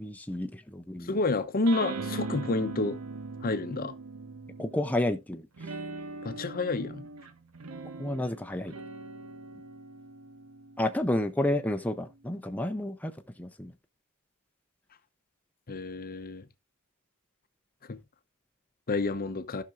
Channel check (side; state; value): both; normal; correlation 0.52